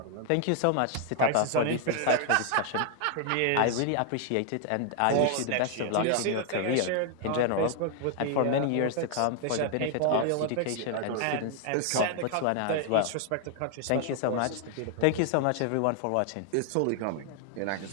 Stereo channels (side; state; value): both; different; correlation 0.00